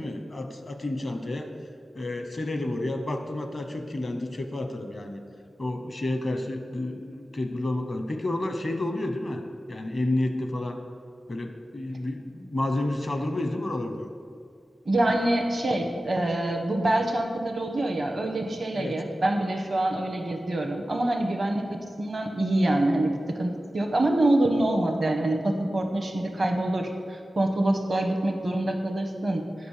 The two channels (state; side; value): normal; both; correlation 0.94